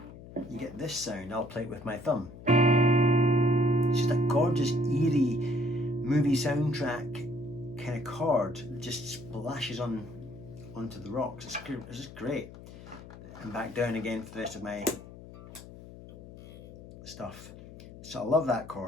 you get this sound. I'll play it with my thumb. It's just a gorgeous, eerie movie soundtrack kind of chord that just splashes onto the rocks. It's just great. And back down again for the rest of my stuff. So I love that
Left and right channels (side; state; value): left; noise; hum, 16 dB below the sound